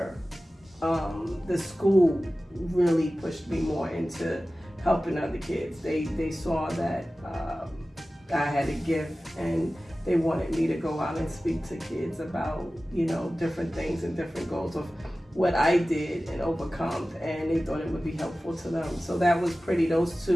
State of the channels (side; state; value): both; normal; correlation 0.96